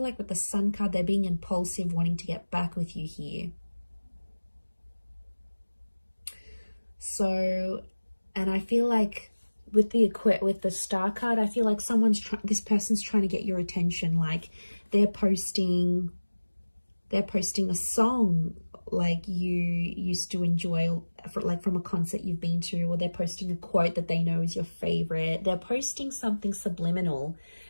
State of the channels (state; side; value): inverted; both; correlation -1.00